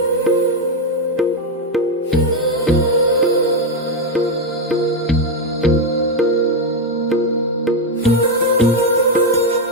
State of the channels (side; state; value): both; normal; correlation 0.05